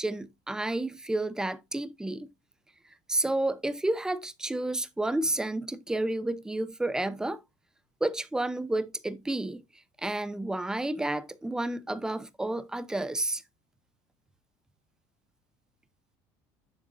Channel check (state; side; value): normal; both; correlation 0.75